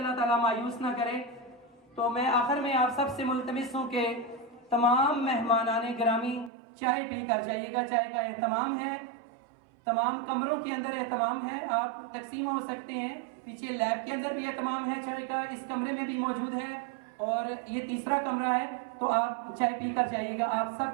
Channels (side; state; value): left; drops out; at 6.5 s